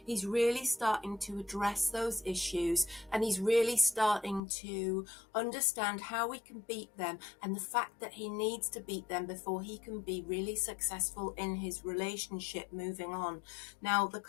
he's really starting to address those issues, and he's really starting to understand how we can beat them, and the fact that he needs to beat them before he can be really successful in his relationship moving on. Now, the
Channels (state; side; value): drops out; right; at 4.4 s